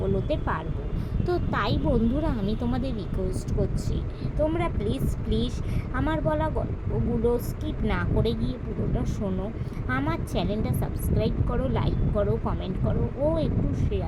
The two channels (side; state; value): both; identical; correlation 1.00